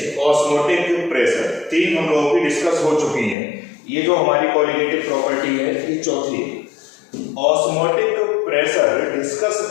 osmotic pressure। तीन हम लोगों की discuss हो चुकी हैं। ये जो हमारी colligative property है ये चौथी है। osmotic pressure डिस्कस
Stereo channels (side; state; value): right; drops out; at 3.4 s